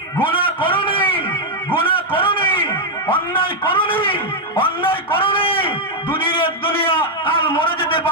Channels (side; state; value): both; normal; correlation -0.01